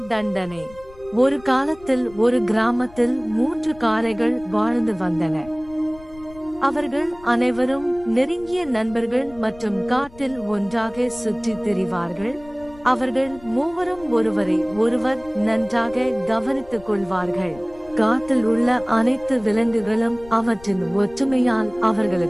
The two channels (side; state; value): left; noise; rumble, 21 dB below the sound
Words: தண்டனை. ஒரு காலத்தில் ஒரு கிராமத்தில் 3 காளைகள் வாழ்ந்து வந்தன. அவர்கள் அனைவரும் நெருங்கிய நண்பர்கள் மற்றும் காட்டில் ஒன்றாக சுற்றித் திரிவார்கள். அவர்கள் மூவரும் ஒருவரை ஒருவர் நன்றாக கவனித்துக் கொள்வார்கள். காட்டில் உள்ள அனைத்து விலங்குகளும் அவற்றின் ஒற்றுமையால்